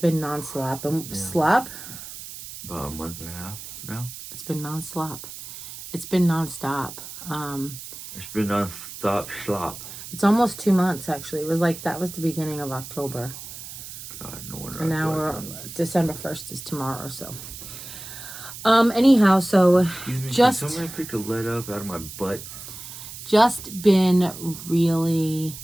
non-stop. Slop? About a month and a half now. It's been non-stop. It's been non-stop. It's been non-stop slop. It's almost 2 months, actually. It was like, that was the beginning of October. God, no wonder. And now we're, December 1st is tomorrow, so. Anyhow, so just. Can somebody pick the lead up out of my butt? Just been really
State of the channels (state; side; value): noise; right; hiss, 12 dB below the sound